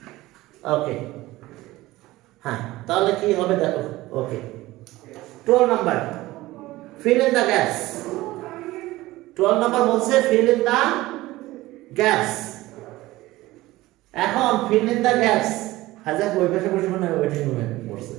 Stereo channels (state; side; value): quieter; left; 18.1 dB